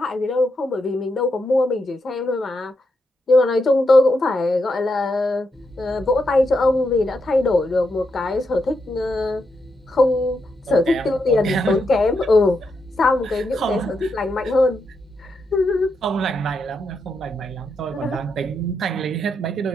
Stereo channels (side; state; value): both; normal; correlation 0.83